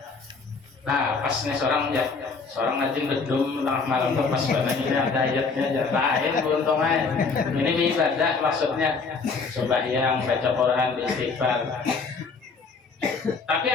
Nah pas nih seorang rajin bedum tengah malam tuh pas banget ini ada ayatnya aja lain untungnya ini ibadah maksudnya sembahyang baca Quran istighfar. Tapi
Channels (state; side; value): quieter; right; 4.6 dB